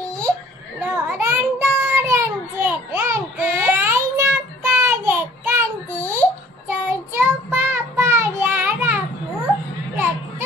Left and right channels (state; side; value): normal; both; correlation 0.54